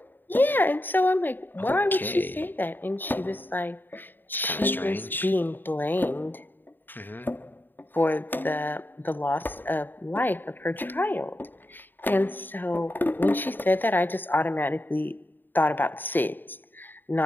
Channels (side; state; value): right; late; 0.092 ms